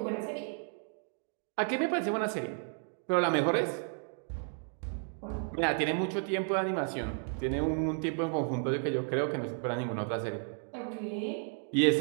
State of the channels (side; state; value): left; silent; 56 dB below the other